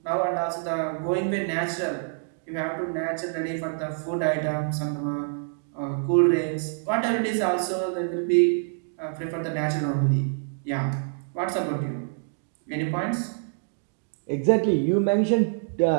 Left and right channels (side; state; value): left; silent; digital silence